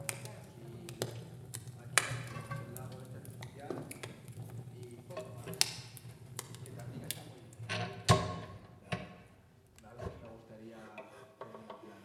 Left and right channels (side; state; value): both; identical; correlation 1.00